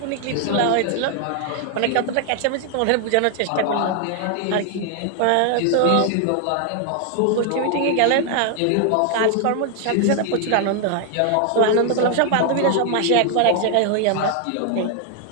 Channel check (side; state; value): both; different; correlation 0.00